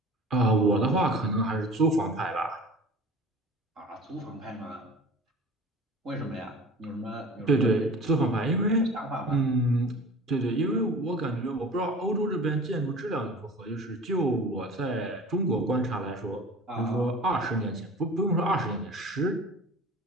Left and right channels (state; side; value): normal; both; correlation 0.40